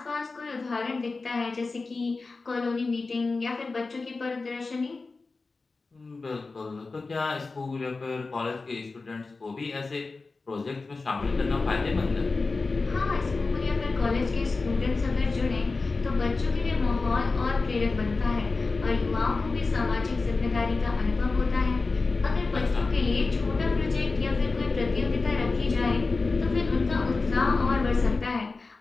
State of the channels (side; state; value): right; quieter; 3.9 dB